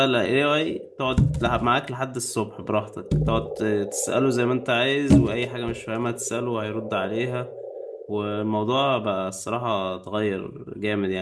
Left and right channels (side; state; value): both; identical; correlation 1.00